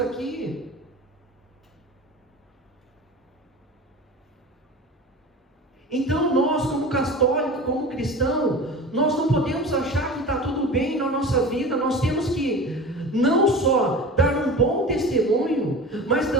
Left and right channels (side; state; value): both; normal; correlation 0.34